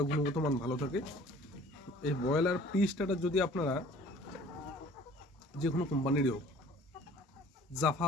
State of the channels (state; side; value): normal; both; correlation 0.50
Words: গুণগত মান ভালো থাকে, এই ব্রয়লার প্রি স্টার্টার যদি আপনারা যে কোনো কোম্পানিরই হোক, জাফা